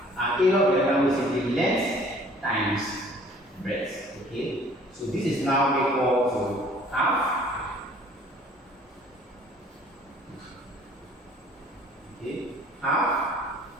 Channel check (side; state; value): both; normal; correlation 0.54